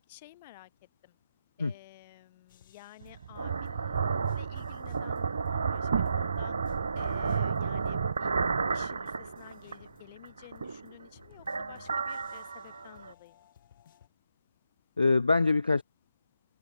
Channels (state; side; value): inverted; both; correlation -0.82